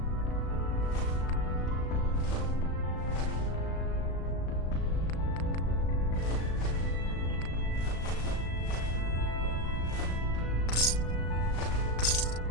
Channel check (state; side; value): late; right; 36 ms